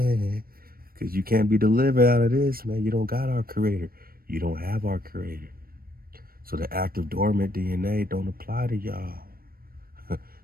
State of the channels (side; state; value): left; late; 0.43 ms